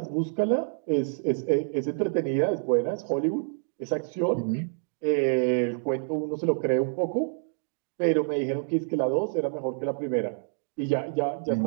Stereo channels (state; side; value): silent; left; digital silence